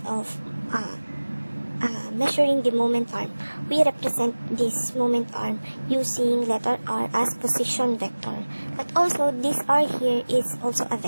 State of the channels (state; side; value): inverted; both; correlation -1.00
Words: of measuring the moment arm, we represent this moment arm using letter r as position vector. But also this r here is also a